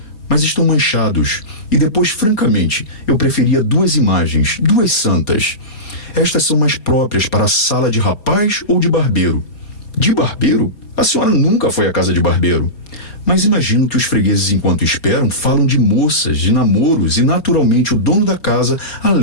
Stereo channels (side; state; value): right; late; 4.4 ms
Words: mas estão manchados. E depois, francamente, eu preferia 2 imagens, 2 santas. Estas são mais próprias para a sala de rapaz ou de barbeiro. De barbeiro? A senhora nunca foi à casa de barbeiro. Mas imagino que os fregueses, enquanto esperam, falam de moças, de namoros, e naturalmente o dono da casa